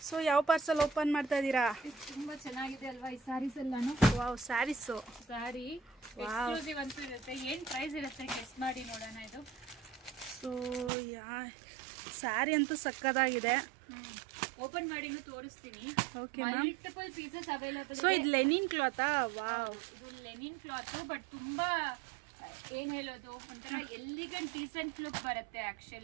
So ಯಾವ parcel open ಮಾಡ್ತಾ ಇದ್ದೀರಾ? ತುಂಬಾ ಚೆನ್ನಾಗಿದೆ ಅಲ್ವಾ ಈ ಸ್ಯಾರೀಸ್ ಎಲ್ಲಾನು? ವಾವ್, ಸ್ಯಾರೀಸು. ಸ್ಯಾರಿ ಎಕ್ಸ್ಕ್ಲೂಸಿವ್ ಅಂತೂ ಇರುತ್ತೆ. ಏನು ಪ್ರೈಸ್ ಇರುತ್ತೆ ಗೆಸ್ ಮಾಡಿ ನೋಡೋಣ. ಇದು ಸೊ ಸ್ಯಾರಿ ಅಂತೂ ಸಕ್ಕದಾಗಿದೆ. ಓಪನ್ ಮಾಡಿನೂ ತೋರಿಸ್ತೀನಿ. Okay ma'am. Multiple pieces available. So ಇದು ಲೆನಿನ್ ಕ್ಲಾತಾ? ವಾವ್, ಇದು ಲೆನಿನ್ ಕ್ಲಾತ್. ಬಟ್ ತುಂಬಾ ಏನ್ ಹೇಳೋದು, ಒಂಥರ ಎಲಿಗೆಂಟ್ ಡೀಸೆಂಟ್ ಲುಕ್ ಬರುತ್ತೆ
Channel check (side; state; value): left; drops out; at 10.9 s